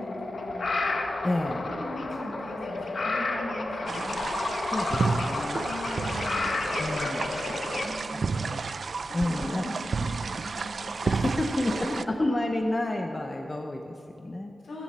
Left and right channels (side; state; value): both; normal; correlation 0.91